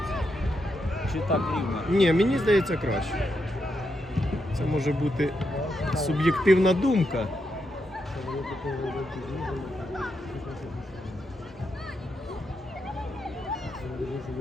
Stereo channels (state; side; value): normal; both; correlation 0.83